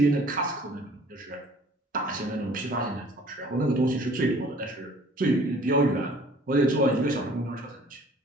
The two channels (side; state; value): both; normal; correlation 0.53